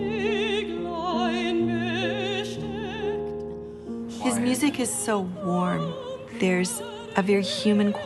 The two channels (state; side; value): identical; both; correlation 1.00